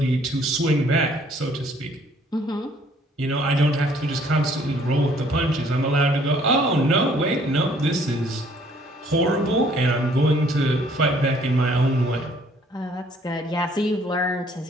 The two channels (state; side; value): normal; both; correlation 0.61